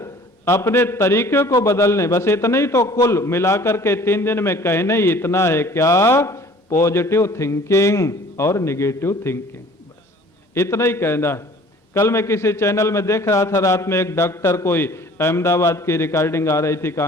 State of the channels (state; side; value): normal; both; correlation 0.50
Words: अपने तरीके को बदलने, बस इतना ही तो कुल मिलाकर के 3 दिन में कहने ही इतना है, क्या? पॉजिटिव थिंकिंग और निगेटिव थिंकिंग, बस इतना ही कहना है। कल मैं किसी चैनल में देख रहा था, रात में एक डॉक्टर, कोई अहमदाबाद की रिकॉर्डिंग आ रही थी,